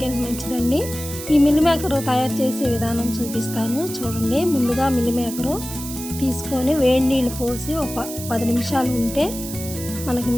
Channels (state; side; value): noise; right; hiss, 10 dB below the sound